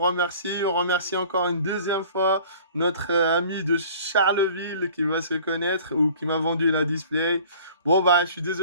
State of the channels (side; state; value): both; inverted; correlation -0.49